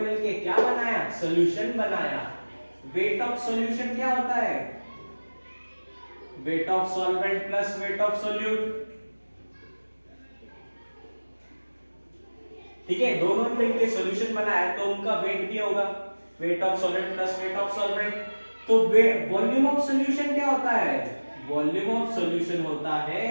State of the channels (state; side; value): inverted; both; correlation -1.00